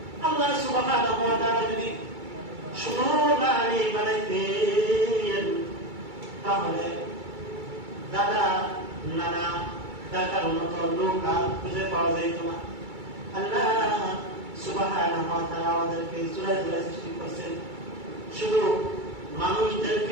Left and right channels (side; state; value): left; late; 2.3 ms